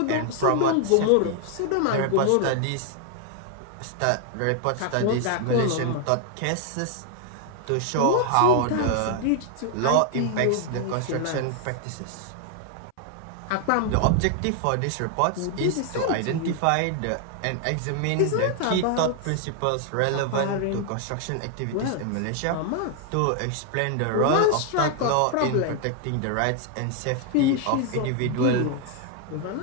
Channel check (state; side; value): different; both; correlation 0.00